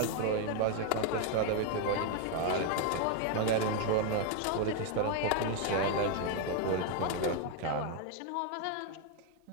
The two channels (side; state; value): both; different; correlation 0.00